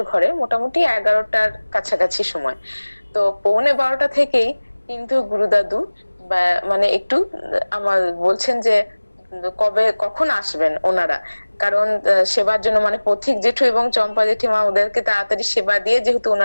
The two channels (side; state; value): both; inverted; correlation -1.00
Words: ঘরে মোটামুটি 11টার কাছাকাছি সময়। তো 11:45 থেকেই কিন্তু গুরুদাদু মানে একটু আমার বলছেন যে কবে কখন আসবেন ওনারা, কারণ সেবার জন্য মানে পথিক জেঠু এবং চম্পা জেঠিমা ওদেরকে তাড়াতাড়ি সেবা দিয়ে যেহেতু